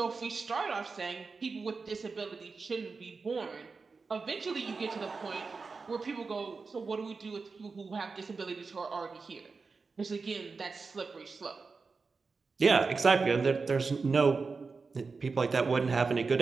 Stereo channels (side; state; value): left; quieter; 4.5 dB